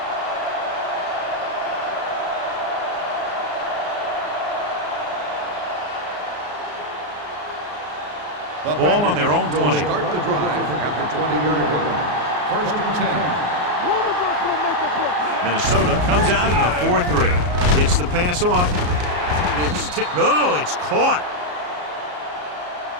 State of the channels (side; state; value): left; late; 34 ms